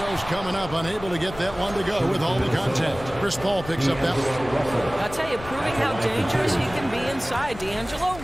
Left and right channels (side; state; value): left; noise; rumble, 14 dB below the sound